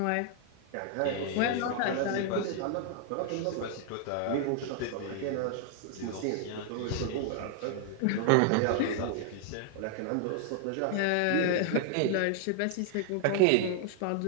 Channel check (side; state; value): both; different; correlation 0.00